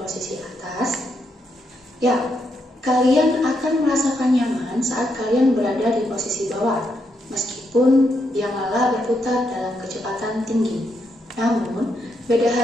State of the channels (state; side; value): normal; both; correlation 0.80